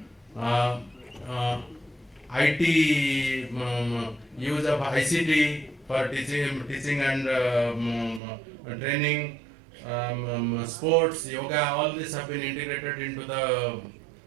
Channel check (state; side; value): drops out; left; at 8.2 s